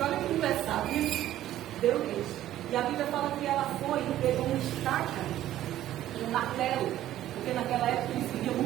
olha que engraçado isso. Deu leite. E a Bíblia fala que ela foi e pegou uma estaca, um martelo. Porque naquela época eles viviam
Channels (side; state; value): left; quieter; 13.2 dB